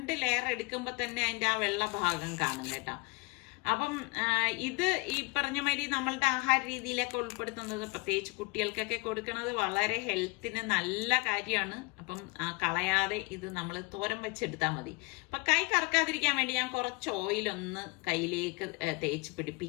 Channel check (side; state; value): right; quieter; 27.8 dB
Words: ലെയർ എടുക്കുമ്പോ തന്നെ അതിന്റെ ആ വെള്ള ഭാഗം കാണും കേട്ടോ. അപ്പം ഇത് ഈ പറഞ്ഞ മാതിരി നമ്മളുടെ ആഹാര രീതിയിലൊക്കെ ഉൾപ്പെടുത്തുന്നത്, പ്രത്യേകിച്ച് കുട്ടികൾക്കൊക്കെ കൊടുക്കുന്നത് വളരെ ഹെൽത്തിന് നല്ല കാര്യമാണ്. അപ്പം കളയാതെ ഇത് നമ്മൾ തോരൻ വെച്ചെടുത്താൽ മതി. അപ്പൊ കൈ കറക്കാതിരിക്കാൻ വേണ്ടി ഞാൻ കുറച്ച് ഓയിലൊന്ന് കയ്യിലേക്ക് തേച്ച്